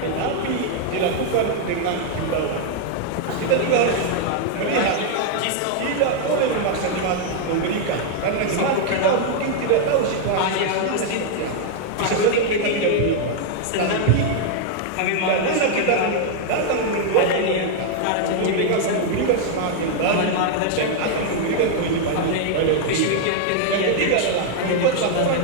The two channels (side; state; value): both; different; correlation 0.00